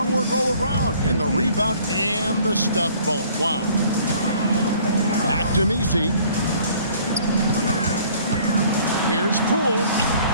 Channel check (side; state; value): both; inverted; correlation -0.55